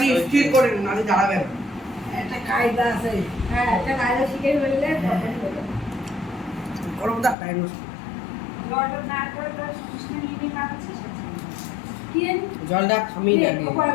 নিয়ে স্থির করে নিন, নাহলে দাঁড়াবে না। একটা কায়দা আছে। হ্যাঁ, একটা কায়দা শিখে ফেললে করব দা টাইম জলটা থামিয়ে রাখি,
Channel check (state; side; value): drops out; right; at 7.4 s